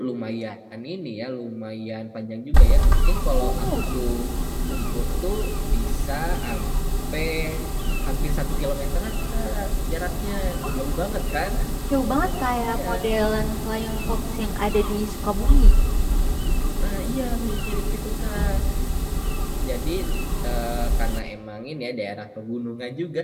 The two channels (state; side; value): identical; both; correlation 1.00